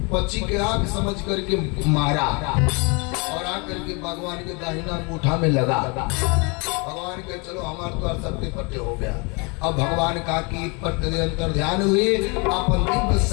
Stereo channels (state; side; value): quieter; right; 30.9 dB